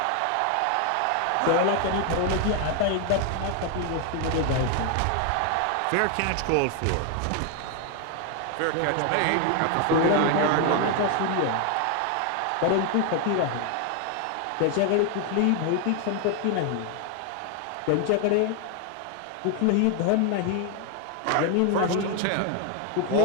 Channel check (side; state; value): both; different; correlation 0.01